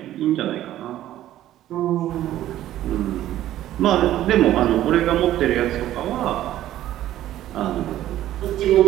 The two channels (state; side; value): quieter; left; 13.2 dB